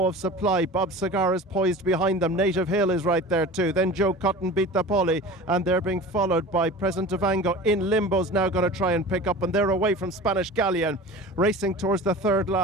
of Supply. Bob Cigar is poised behind them. Native Hill is right there too. Then Joe Cotton, Beat the Paulie, and they're being followed by Present Vango. In Limbo's now going to try and pick up, and they're away from Spanish Galleon. Racing towards the third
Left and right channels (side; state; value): both; normal; correlation 0.37